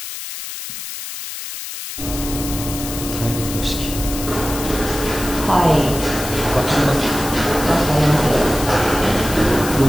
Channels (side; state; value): left; noise; hiss, 8 dB below the sound